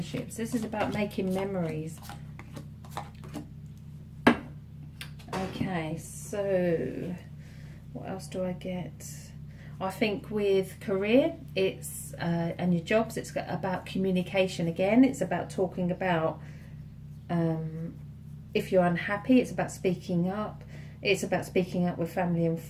This is about making memories. Okay, so what else do I get? I think with career, it's and your jobs, it's about communication again. It's about talking about if you're unhappy, it's about speaking up. It's about speaking up with family and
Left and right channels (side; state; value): both; identical; correlation 1.00